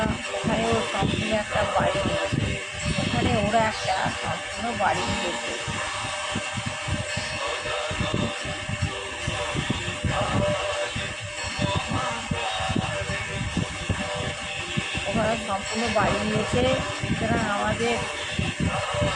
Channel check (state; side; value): identical; both; correlation 1.00